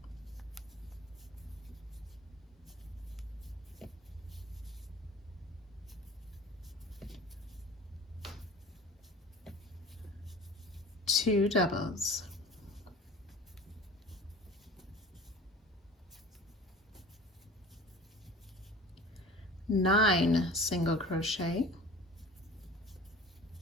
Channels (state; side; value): normal; both; correlation 0.41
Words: two doubles, nine single crochet,